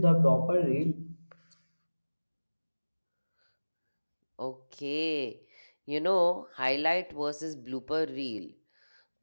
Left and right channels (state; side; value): inverted; both; correlation -1.00